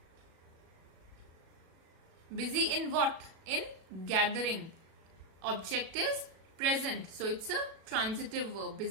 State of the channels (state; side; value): late; left; 37 ms